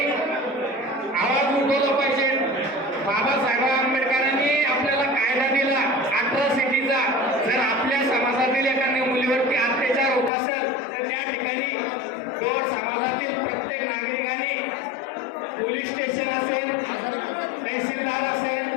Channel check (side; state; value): right; drops out; at 10.3 s